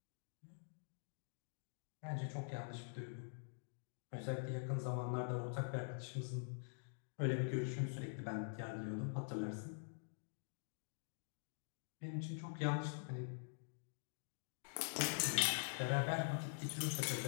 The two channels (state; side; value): silent; right; digital silence